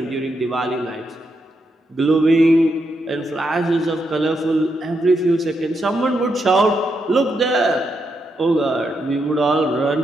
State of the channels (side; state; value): both; normal; correlation 0.82